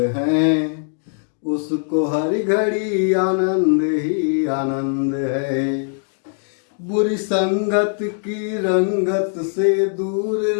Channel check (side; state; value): right; silent; digital silence